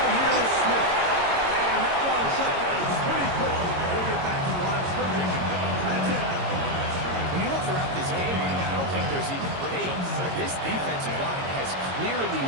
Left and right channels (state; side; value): late; left; 22 ms